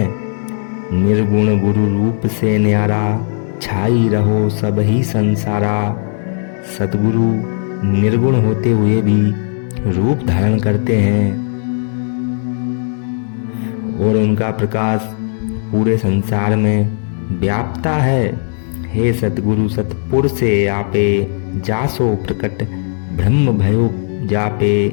निर्गुण गुरु रूप से न्यारा, छाई रहो सब ही संसारा। सतगुरु निर्गुण होते हुए भी रूप धारण करते हैं और उनका प्रकाश पूरे संसार में व्यापता है। हे सतगुरु सतपुर से आपे, जासो प्रकट ब्रह्म भयो जापे।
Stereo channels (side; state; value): right; silent; digital silence